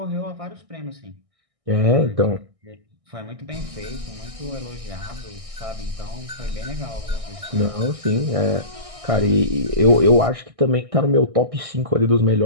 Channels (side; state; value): left; late; 1.6 ms